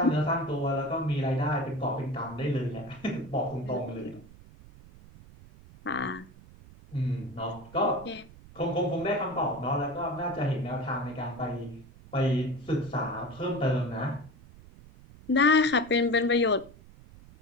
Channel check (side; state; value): right; noise; rumble, 21 dB below the sound